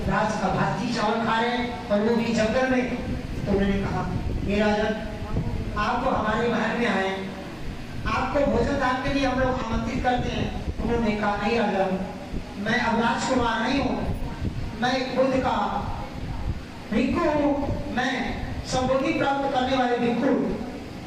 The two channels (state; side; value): identical; both; correlation 1.00